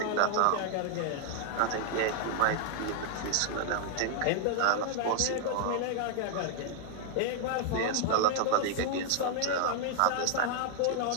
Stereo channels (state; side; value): different; both; correlation 0.00